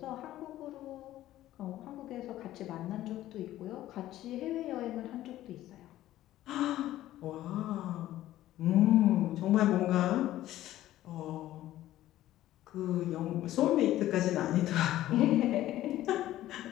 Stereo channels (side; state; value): right; quieter; 14.2 dB